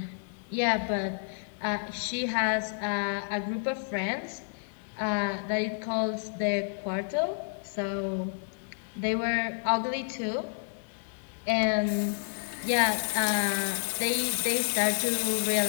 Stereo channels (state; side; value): silent; right; digital silence